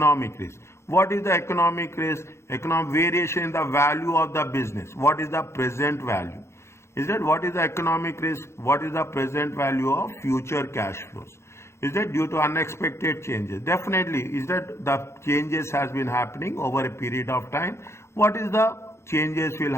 risk. What is the economic risk? Economic variation in the value of the business. What is the present value? Is that what is the economic risk? What is the present value of future cash flows? Is that due to unexpected changes? Definitely. Is that the changes has been happening over a period of time? What is the changes will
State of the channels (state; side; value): late; right; 0.13 ms